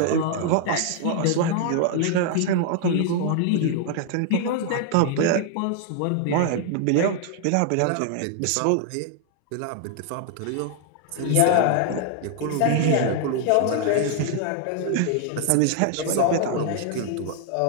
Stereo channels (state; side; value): different; both; correlation 0.00